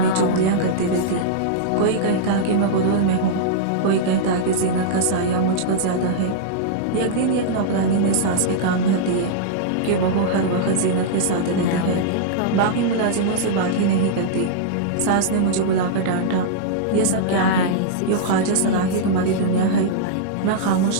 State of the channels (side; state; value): both; different; correlation -0.02